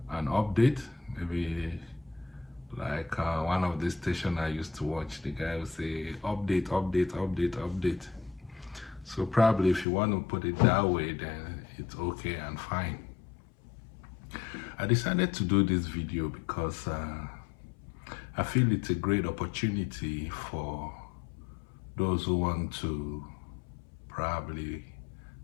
an update, maybe like one of the station I used to watch. The guy would say, update, update, update, update. So probably if you want to put it that way, then it's okay and fine. I decided to do this video because I feel it's a great opportunity for those who want to probably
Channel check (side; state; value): right; drops out; at 9.9 s